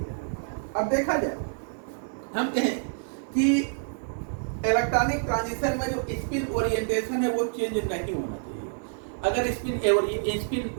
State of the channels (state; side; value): silent; left; 60 dB below the other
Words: अब देखा जाए हम कहें कि इलेक्ट्रॉनिक ट्रांजिशन में जो स्पिन ओरिएंटेशन है वो चेंज नहीं होना चाहिए। अगर स्पिन